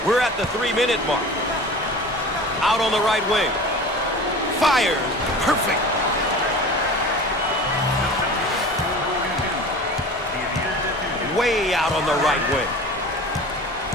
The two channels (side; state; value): both; normal; correlation 0.37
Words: We're at the 3-minute mark. Out on the right wing. Fires. Perfect. Way out on the right wing.